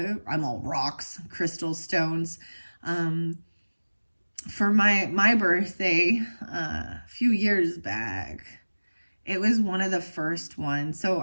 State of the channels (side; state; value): both; inverted; correlation -1.00